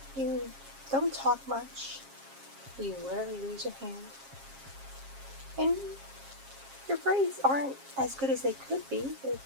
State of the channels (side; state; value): left; late; 7.4 ms